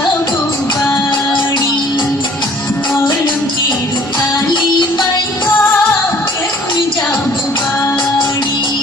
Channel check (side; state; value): right; noise; rumble, 29 dB below the sound